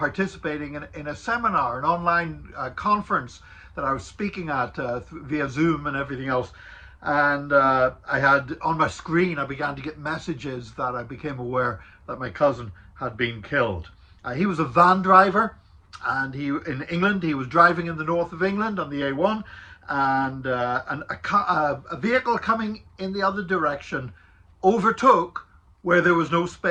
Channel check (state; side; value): identical; both; correlation 1.00